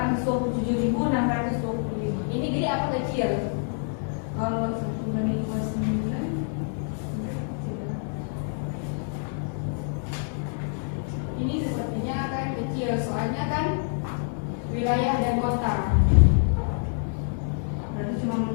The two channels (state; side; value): silent; right; 60 dB below the other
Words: Ini gede apa kecil? Kalau 1.029 Ini sepertinya kan kecil, soalnya kan wilayah dan kota. berarti cuma